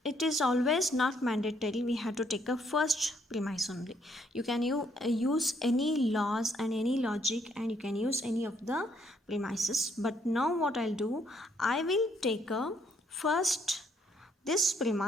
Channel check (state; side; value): normal; both; correlation 0.69